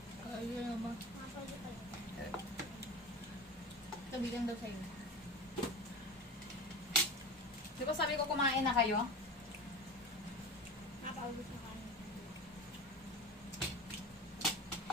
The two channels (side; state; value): both; normal; correlation 0.29